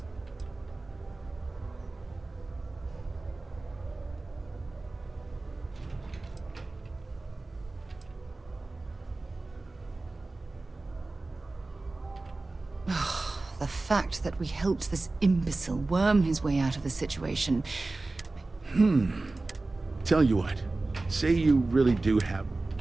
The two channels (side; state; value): left; quieter; 3.2 dB